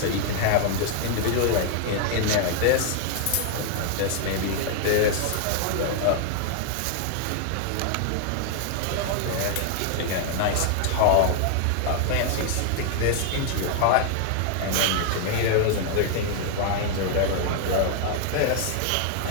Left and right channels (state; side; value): different; both; correlation 0.00